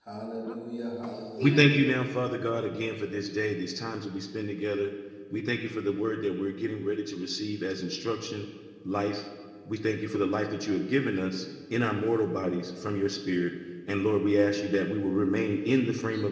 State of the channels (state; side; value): identical; both; correlation 1.00